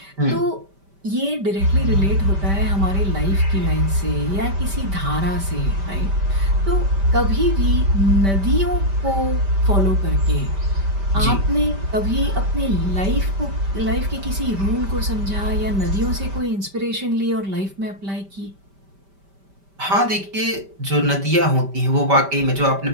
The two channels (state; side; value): late; left; 5.1 ms